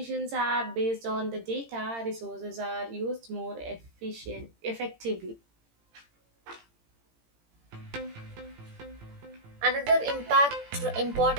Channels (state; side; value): late; left; 17 ms